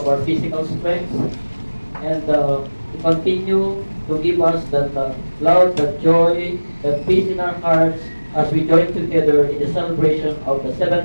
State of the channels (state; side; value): inverted; both; correlation -1.00